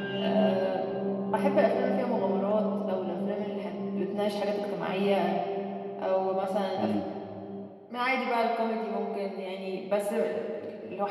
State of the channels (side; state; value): both; identical; correlation 1.00